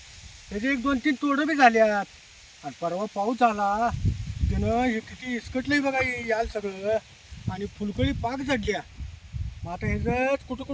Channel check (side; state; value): both; identical; correlation 1.00